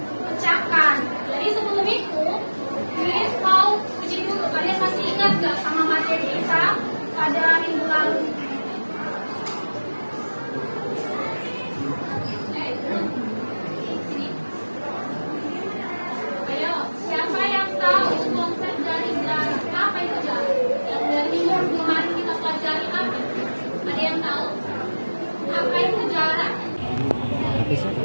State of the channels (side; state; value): both; inverted; correlation -1.00